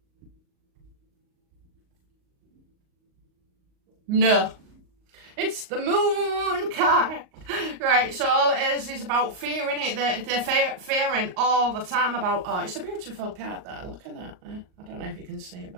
No. It's the moon card. Right, so all it is about fearing it. They're fearing all the time about, oh, it's a beautiful card there. Look at that. I don't know if you can see it,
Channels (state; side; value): late; left; 38 ms